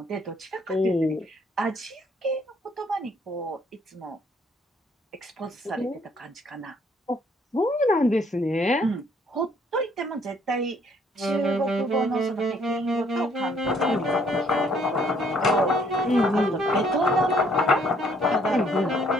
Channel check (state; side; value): normal; both; correlation 0.65